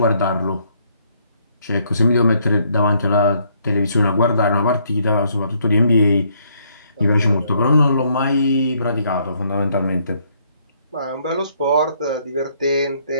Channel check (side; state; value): both; inverted; correlation -0.69